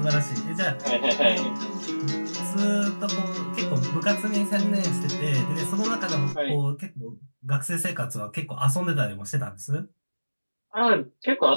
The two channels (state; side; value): inverted; both; correlation -1.00